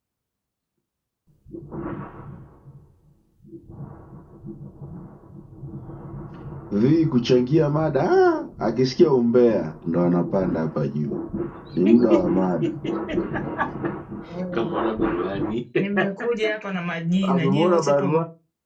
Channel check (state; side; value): identical; both; correlation 1.00